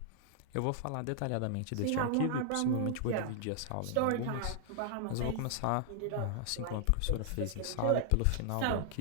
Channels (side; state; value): both; different; correlation 0.00